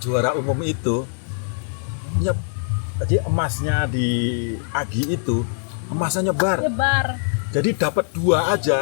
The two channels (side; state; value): right; silent; digital silence